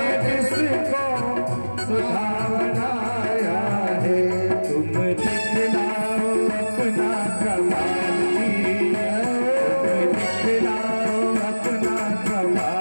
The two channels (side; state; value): both; inverted; correlation -1.00